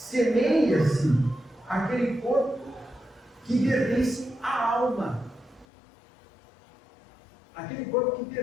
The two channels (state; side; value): drops out; right; at 5.7 s